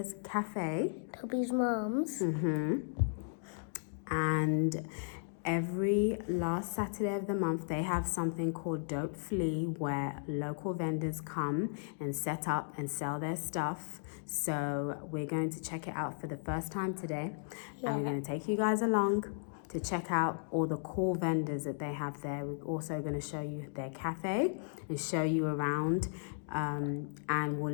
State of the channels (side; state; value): right; silent; digital silence